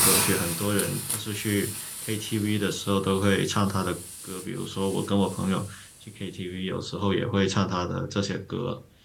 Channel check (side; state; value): both; identical; correlation 1.00